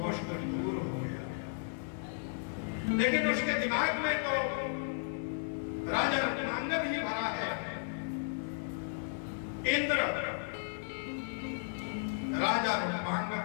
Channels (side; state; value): right; silent; digital silence